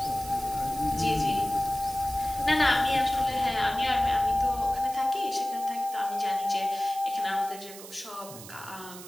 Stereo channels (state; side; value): noise; right; hiss, 15 dB below the sound